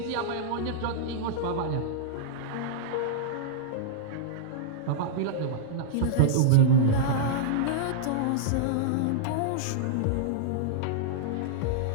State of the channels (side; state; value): both; different; correlation -0.02